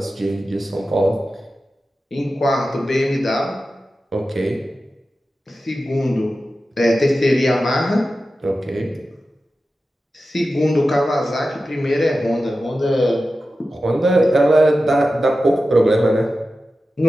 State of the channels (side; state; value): both; normal; correlation 0.93